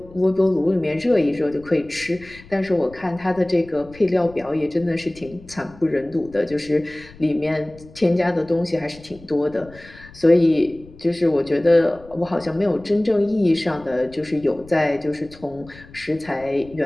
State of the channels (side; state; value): left; noise; rumble, 21 dB below the sound